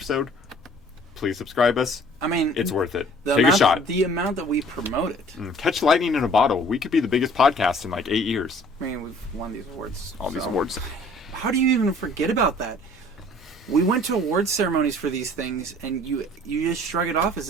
Please subscribe us. I mean, It's worth it. the Take amount, a shot. The amount that we promote it. Catch lightning in a bottle. We could be the biggest podcast in 8 years. I mean, we've won these awards. All these so- awards. How do you even forget about that? We went to awards ceremonies for these things, and you just shrug it off as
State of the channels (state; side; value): normal; both; correlation 0.52